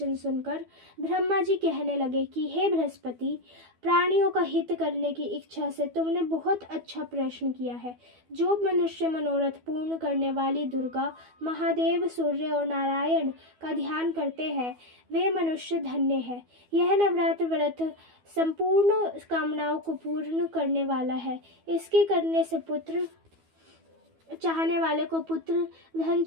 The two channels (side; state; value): left; late; 12 ms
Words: सुनकर ब्रह्मा जी कहने लगे कि हे बृहस्पति, प्राणियों का हित करने की इच्छा से तुमने बहुत अच्छा प्रश्न किया है। जो मनुष्य मनोरथ पूर्ण करने वाली दुर्गा, महादेव, सूर्य और नारायण का ध्यान करते हैं, वे मनुष्य धन्य है। यह नवरात्र व्रत संपूर्ण कामनाओं को पूर्ण करने वाला है। इसके करने से पुत्र चाहने वाले को पुत्र, धन